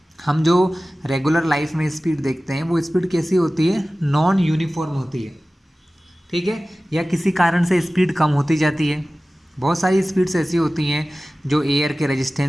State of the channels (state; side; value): normal; both; correlation 0.97